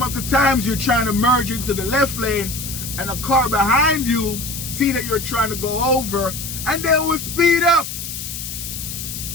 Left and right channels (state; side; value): noise; left; hiss, 7 dB below the sound